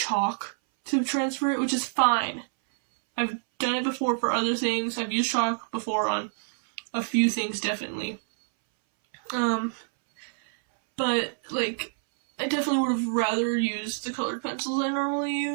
to transfer it, which is fine. I've done it before for other things. I've used chalk before on a few things, definitely. But, like, I definitely would have rather used the colored pencils I normally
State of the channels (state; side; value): silent; left; 60 dB below the other